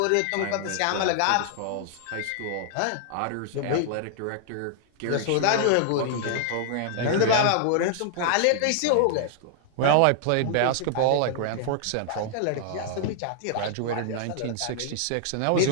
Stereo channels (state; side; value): different; both; correlation -0.01